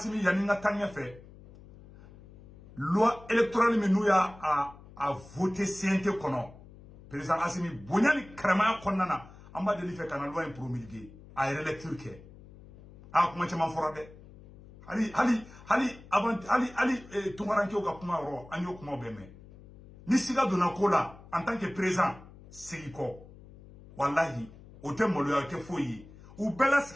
yaninga tanya fait loi électorale mais nous ya a voté CNT kono président Assimi bonyani krama konnana amba de fait kana loi promulguée a électure ke a kuma chama forade hali avant tungaranke ka kuma ro anyo kuma beme ni siga dona kola en tant que président siriko wallahi o te molo ya te foyi ou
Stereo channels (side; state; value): left; noise; hum, 20 dB below the sound